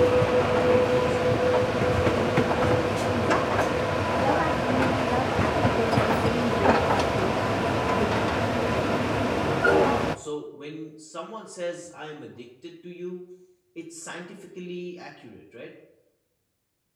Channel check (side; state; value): both; identical; correlation 1.00